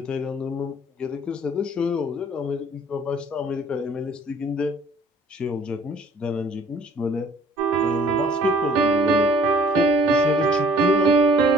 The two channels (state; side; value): normal; both; correlation 0.55